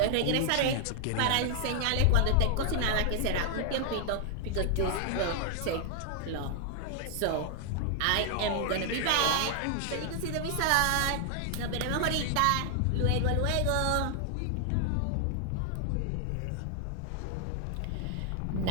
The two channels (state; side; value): different; both; correlation 0.00